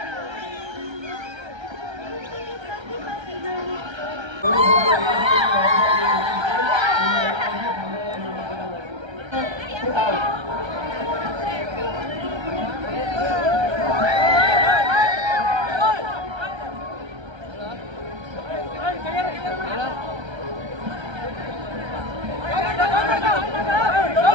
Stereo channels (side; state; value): left; late; 1.3 ms